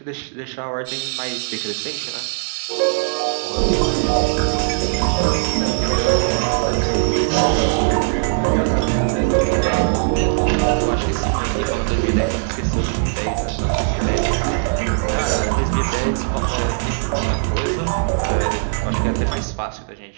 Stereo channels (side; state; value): left; silent; digital silence